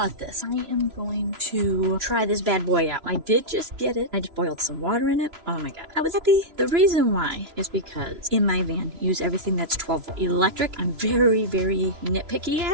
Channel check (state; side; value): late; left; 3.0 ms